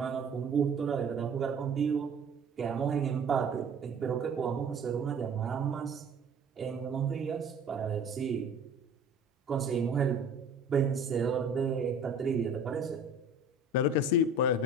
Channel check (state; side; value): quieter; left; 3.1 dB